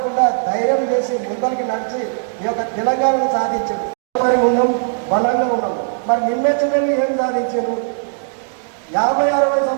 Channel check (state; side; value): silent; left; digital silence